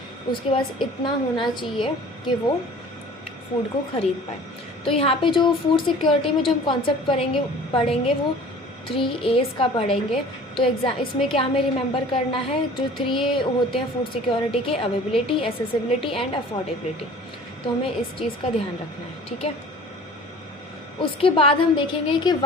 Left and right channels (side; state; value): both; normal; correlation 0.46